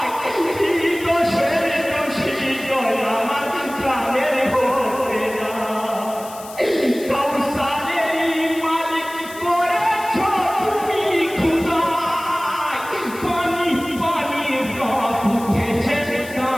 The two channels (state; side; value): noise; left; hiss, 17 dB below the sound